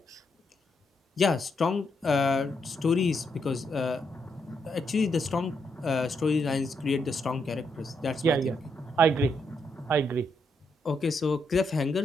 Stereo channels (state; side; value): normal; both; correlation 0.79